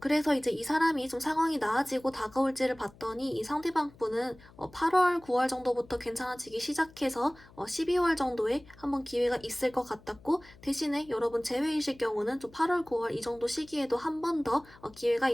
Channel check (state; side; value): noise; left; hum, 24 dB below the sound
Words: 이제 이 사람이 좀 상황이 나아지고 다가올지를 봤더니 이 상대방 분은 8월, 9월 정도부터 괜찮아지기 시작해서 12월 정도에 한번 기회가 있을 것 같았고, 대신에 여러분 제외이실 경우는 좀 8월, 9월 이 정도 시기에도 한 번 더 기회가